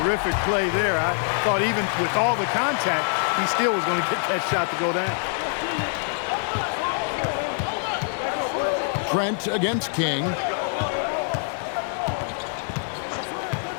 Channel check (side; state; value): right; silent; 62 dB below the other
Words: play there. I thought even with all the contact, he still was going to get that shot to go down. Trent against King.